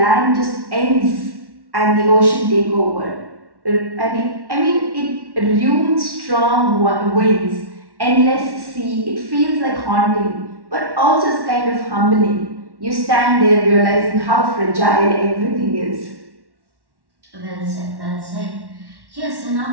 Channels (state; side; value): late; left; 1.1 ms